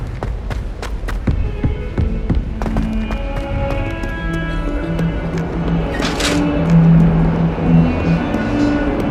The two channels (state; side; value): identical; both; correlation 1.00